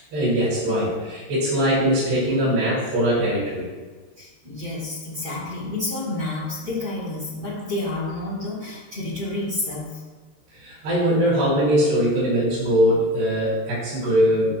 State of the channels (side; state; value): left; late; 13 ms